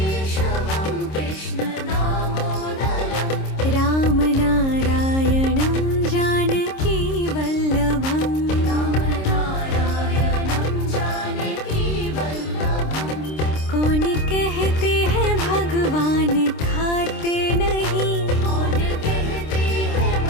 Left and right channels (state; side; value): late; right; 26 ms